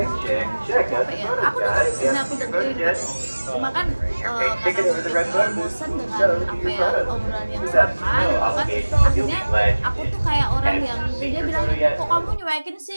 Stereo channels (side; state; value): both; inverted; correlation -1.00